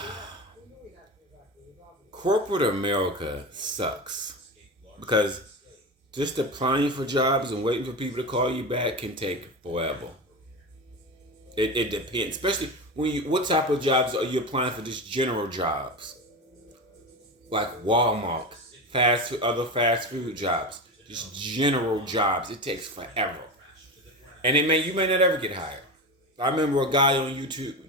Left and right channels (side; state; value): both; normal; correlation 0.23